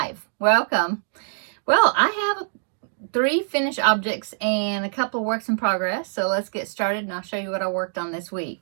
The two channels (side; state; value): left; silent; digital silence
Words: Welcome. Well, I have 3 finished objects and a couple of works in progress, so let's get started and I'll show you what I worked on this